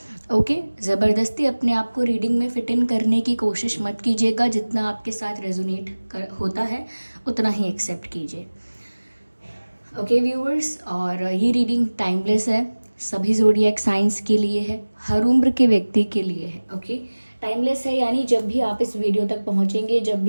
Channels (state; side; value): inverted; both; correlation -1.00